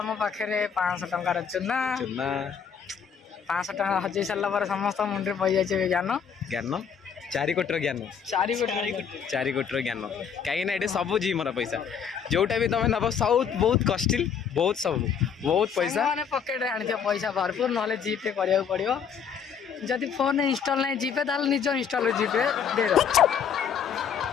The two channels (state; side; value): quieter; right; 7.2 dB